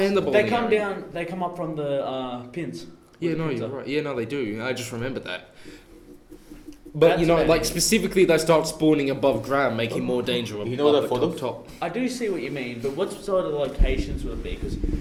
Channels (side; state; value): both; identical; correlation 1.00